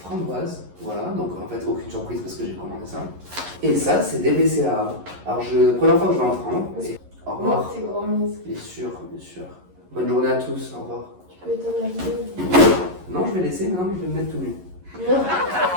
Voilà, donc en fait aucune surprise parce que j'ai commandé ça. Et ça c'est des BCAA. Alors première fois que je vais en prendre. Et au revoir. Bien sûr, bien sûr. Bonne journée à tous, au revoir. Tu peux éteindre la vidéo. Non, je vais laisser, maintenant je vais me mettre tout nu.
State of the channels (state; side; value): late; left; 11 ms